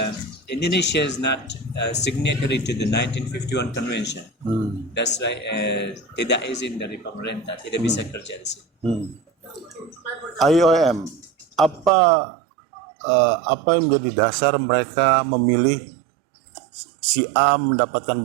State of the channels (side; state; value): left; drops out; at 11.9 s